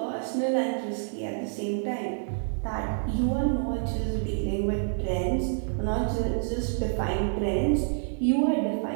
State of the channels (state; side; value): silent; left; 60 dB below the other